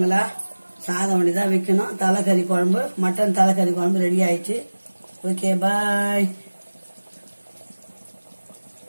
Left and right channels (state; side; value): inverted; both; correlation -1.00